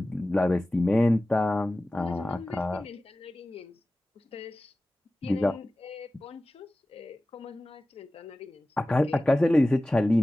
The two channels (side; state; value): both; normal; correlation 0.96